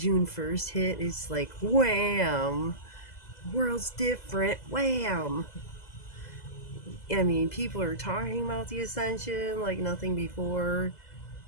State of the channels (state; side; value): late; right; 2.0 ms